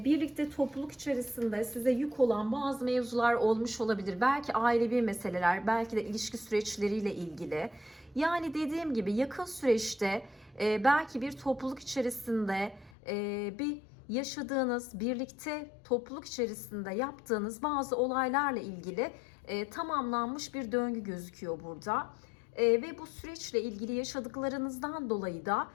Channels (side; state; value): right; drops out; at 12.9 s